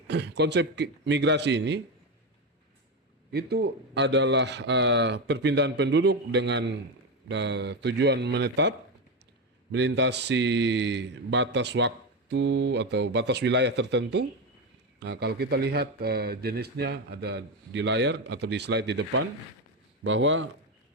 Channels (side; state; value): both; normal; correlation 0.13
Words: konsep migrasi ini itu adalah perpindahan penduduk dengan tujuan menetap, melintasi batas waktu atau batas wilayah tertentu. Nah, kalau kita lihat jenisnya ada di layar atau di slide di depan, bahwa